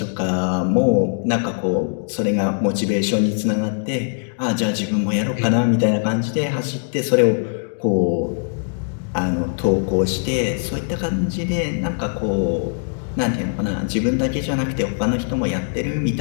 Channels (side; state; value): right; silent; digital silence